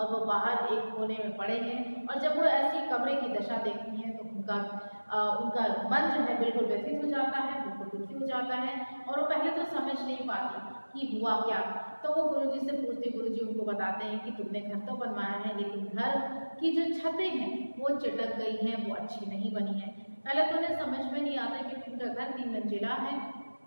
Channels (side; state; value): both; inverted; correlation -1.00